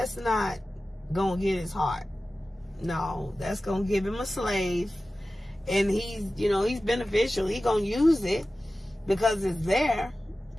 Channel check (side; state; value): both; normal; correlation 0.95